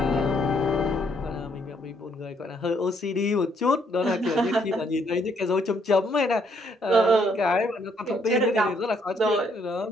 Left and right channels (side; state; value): both; normal; correlation 0.70